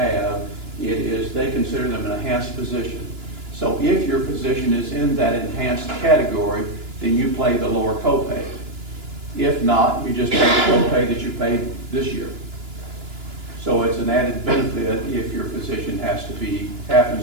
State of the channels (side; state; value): left; late; 2.9 ms